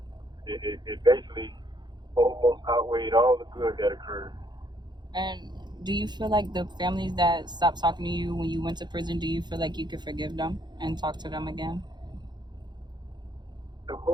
it basically almost outweighed all the good that occurred. And do you feel like the families that stopped talking to you when you went to prison, do you feel like you could forgive them and talk to them again? Of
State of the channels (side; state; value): left; late; 0.21 ms